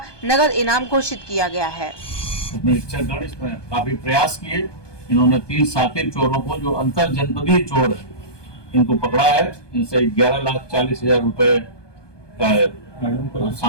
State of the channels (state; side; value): late; right; 1.2 ms